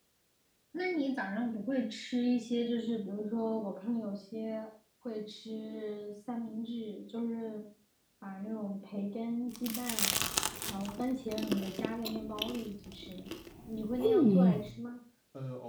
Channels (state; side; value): identical; both; correlation 1.00